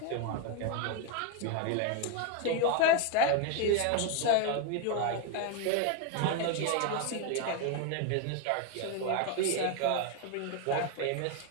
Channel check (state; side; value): different; both; correlation 0.02